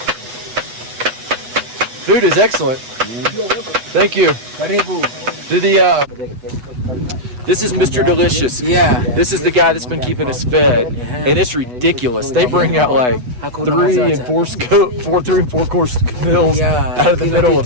Food is excellent. Thank you. Do this is Mr. Delicious. Yeah. This is the guy that's been keeping us fed, and it's ridiculous. They bring out like 3 and 4 course meals out of the middle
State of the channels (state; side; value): late; left; 8.1 ms